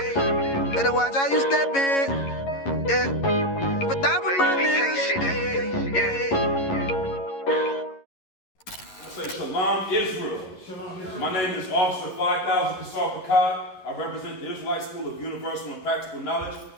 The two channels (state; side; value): late; right; 11 ms